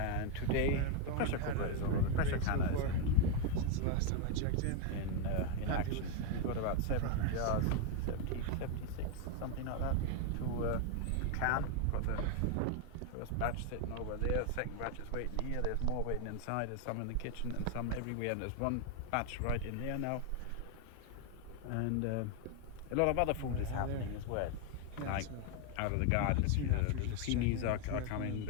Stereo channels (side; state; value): both; different; correlation 0.01